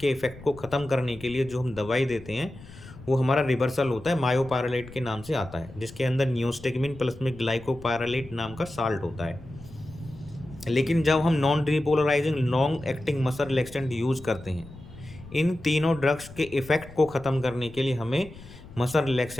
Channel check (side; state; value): left; noise; rumble, 17 dB below the sound